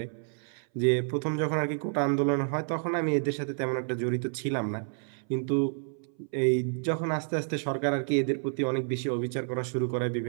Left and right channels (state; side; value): silent; left; 58 dB below the other